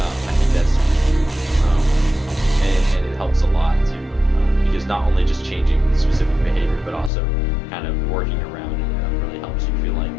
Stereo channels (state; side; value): drops out; right; at 7.1 s